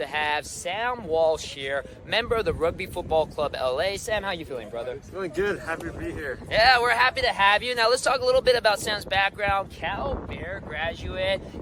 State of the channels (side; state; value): both; identical; correlation 1.00